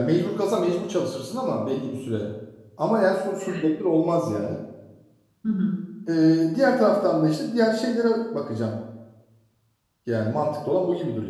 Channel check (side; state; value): both; identical; correlation 1.00